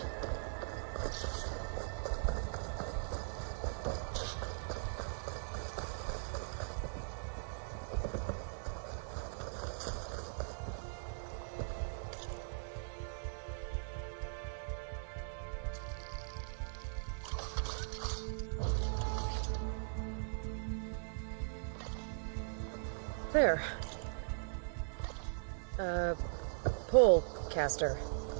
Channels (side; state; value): left; silent; digital silence